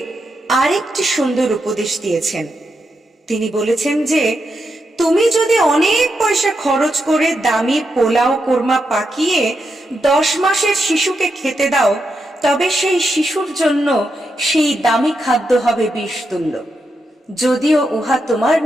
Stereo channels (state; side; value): normal; both; correlation 0.84